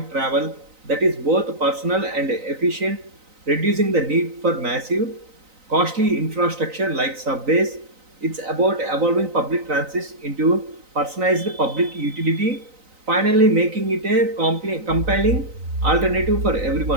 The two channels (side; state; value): left; late; 3.9 ms